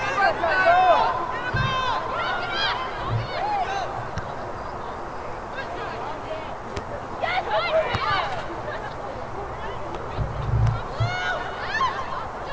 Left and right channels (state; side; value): identical; both; correlation 1.00